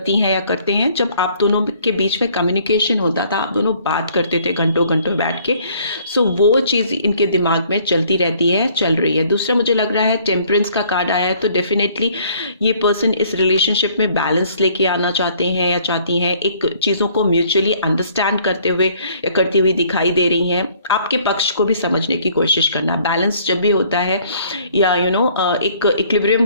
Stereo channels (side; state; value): both; inverted; correlation -0.59